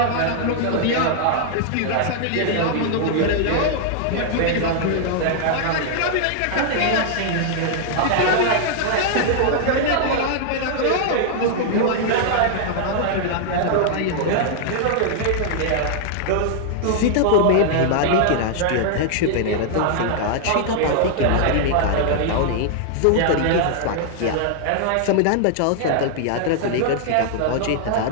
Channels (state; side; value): different; both; correlation 0.00